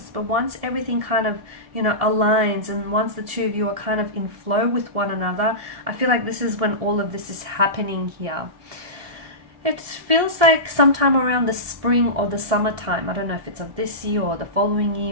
But once everything kind of, you know, aligns, and once the two of you are kind of in flow with one another, I feel like this is when all of this is happening here. It feels like sometime around the spring or the summertime. I don't know if it's of this year or the following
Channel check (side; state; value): left; late; 1.7 ms